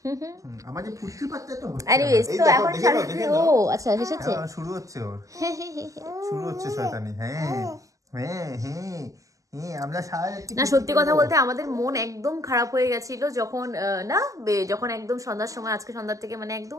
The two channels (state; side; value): late; left; 0.16 ms